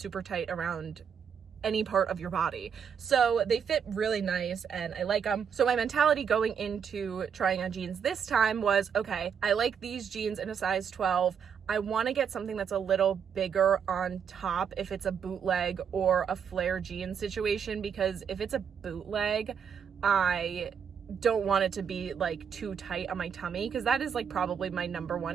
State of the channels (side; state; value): left; quieter; 7.3 dB